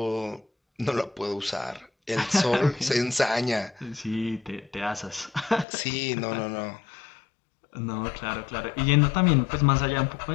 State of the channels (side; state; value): right; drops out; at 5.7 s